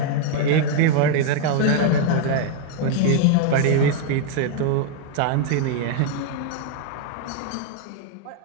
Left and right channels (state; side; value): different; both; correlation 0.00